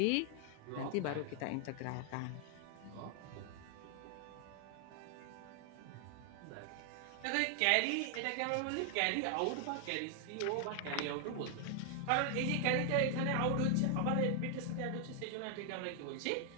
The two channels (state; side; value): different; both; correlation 0.00